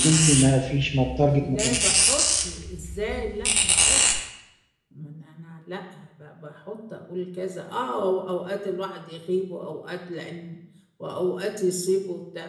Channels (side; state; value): both; identical; correlation 1.00